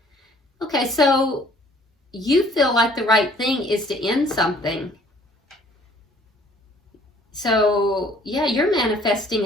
Okay, so you feel like the right thing is to end something. So, yeah, you're manifesting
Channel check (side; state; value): both; normal; correlation 0.57